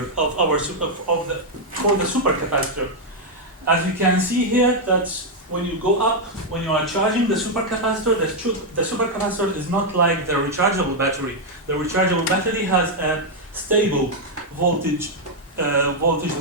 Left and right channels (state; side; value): normal; both; correlation -0.01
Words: of for the supercapacitor. As you can see here, that when you go up, when you are charging the supercapacitor, the supercapacitor is not like the rechargeable battery. The rechargeable battery has a stable voltage